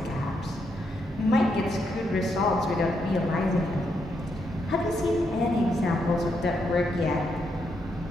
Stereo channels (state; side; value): normal; both; correlation 0.79